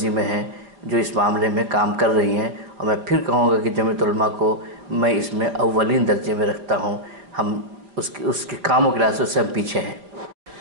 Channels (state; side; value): late; left; 4.7 ms